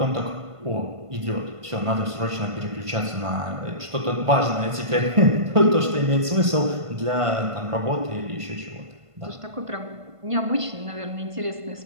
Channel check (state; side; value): late; left; 1.5 ms